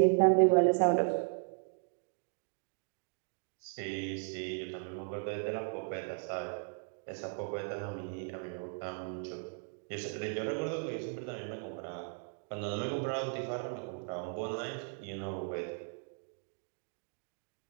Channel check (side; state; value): left; silent; 54 dB below the other